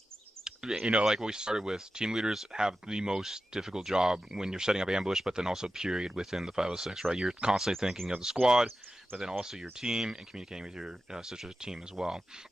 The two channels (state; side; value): normal; both; correlation 0.93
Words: You know, like we started with, team leaders have the most difficult job when you're setting up ambush, but then also period within the 506, right? You're constantly thinking of the squad, but then also your team and communicating with your sister team as well.